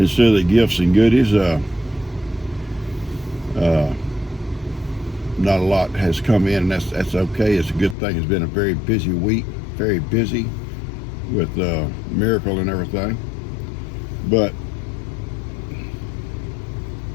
of the gifts and goodies. Not a lot has come in, and that's okay. It's a good thing. It's been a very busy week, very busy with Miracle and everything, but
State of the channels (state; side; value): drops out; right; at 8.0 s